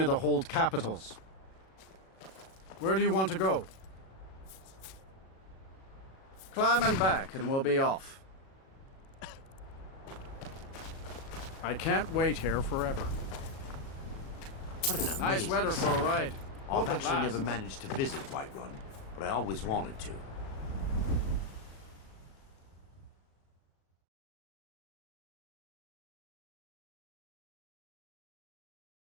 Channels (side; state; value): right; late; 37 ms